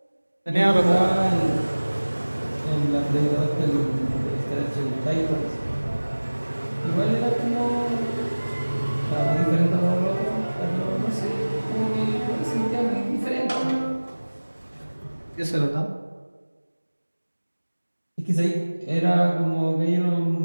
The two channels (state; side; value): inverted; both; correlation -1.00